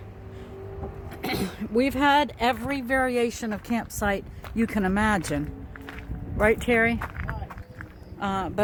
We've had every variation of campsite you can imagine. Right, Terry?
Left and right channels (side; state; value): both; identical; correlation 1.00